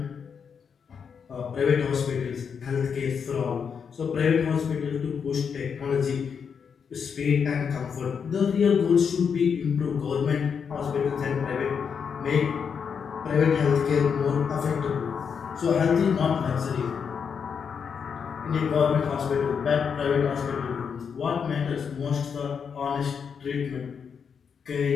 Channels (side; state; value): right; quieter; 6.6 dB